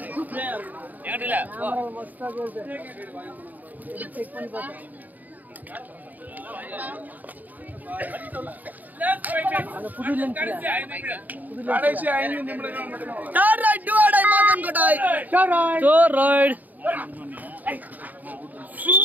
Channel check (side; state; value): left; late; 0.082 ms